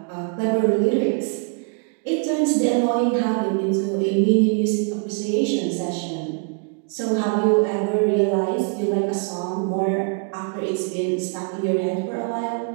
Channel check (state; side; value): quieter; left; 36.8 dB